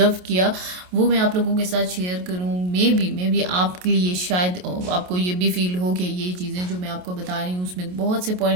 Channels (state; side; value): late; left; 28 ms